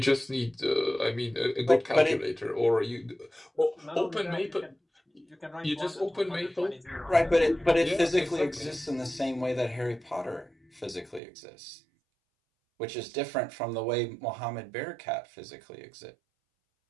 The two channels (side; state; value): left; drops out; at 11.2 s